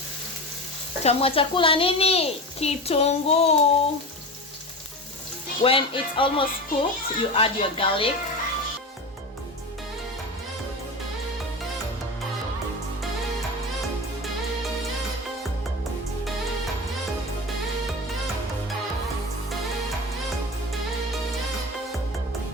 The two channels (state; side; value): normal; both; correlation 0.27